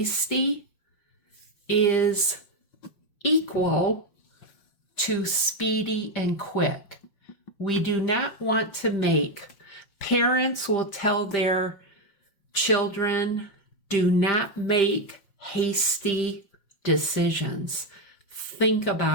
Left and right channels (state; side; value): late; right; 5.6 ms